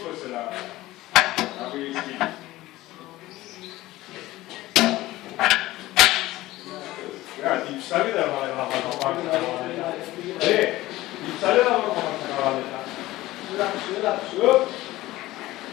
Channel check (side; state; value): right; quieter; 17.3 dB